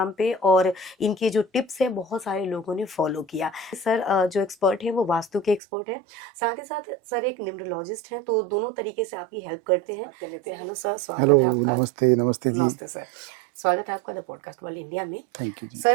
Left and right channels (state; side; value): drops out; left; at 5.6 s